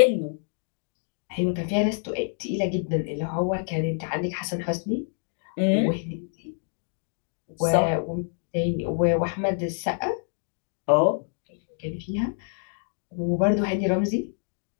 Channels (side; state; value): right; silent; 60 dB below the other